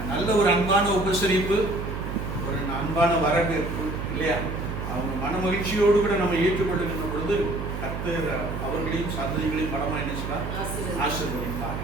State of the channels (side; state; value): right; noise; hum, 5 dB below the sound